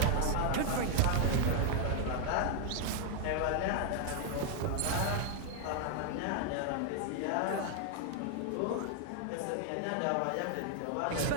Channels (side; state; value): both; different; correlation 0.00